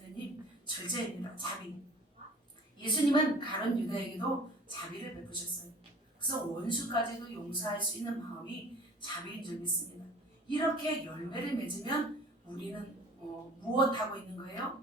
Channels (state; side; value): normal; both; correlation 0.47